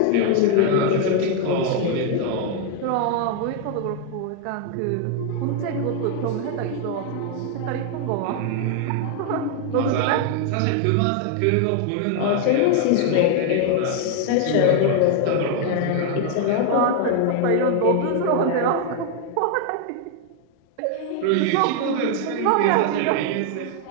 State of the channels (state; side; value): different; both; correlation 0.00